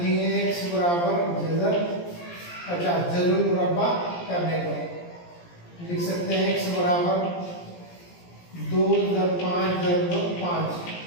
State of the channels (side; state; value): right; late; 17 ms